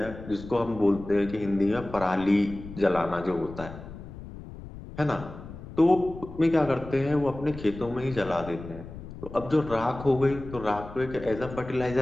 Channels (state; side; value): noise; left; rumble, 13 dB below the sound